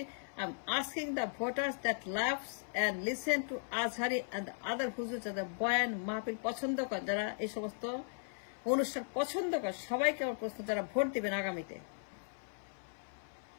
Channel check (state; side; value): silent; right; 53 dB below the other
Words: I am asking the voters that loves and listen to Azhari and other হুজুর, যারা বয়ান মাহফিল পছন্দ করে, যারা এই সমস্ত অনুষ্ঠান পছন্দ করে, সবাইকে আমার প্রশ্ন, যারা ভোট দিবেন আগামীতে,